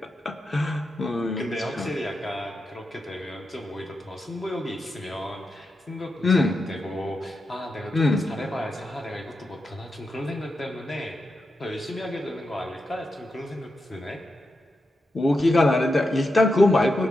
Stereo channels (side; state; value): both; normal; correlation 0.87